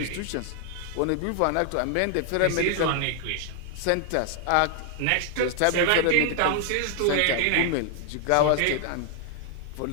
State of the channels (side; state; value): both; different; correlation 0.00